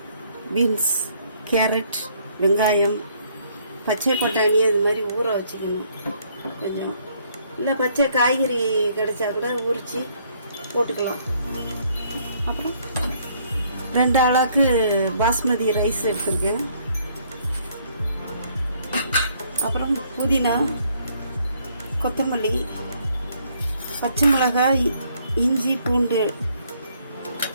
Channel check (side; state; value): both; inverted; correlation -0.66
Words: பீன்ஸ், கேரட், வெங்காயம், பச்சை பட்டாணி அது மாதிரி ஊற வச்சுக்கணும். கொஞ்சம் இல்லை பச்சை காய்கறி கிடைச்சா கூட உரித்து போட்டுக்கலாம். அப்புறம் 2 அளவுக்கு பாஸ்மதி ரைஸ் எடுத்துருக்கேன். அப்புறம் புதினா, கொத்தமல்லி, பச்சை மிளகாய், இஞ்சி, பூண்டு,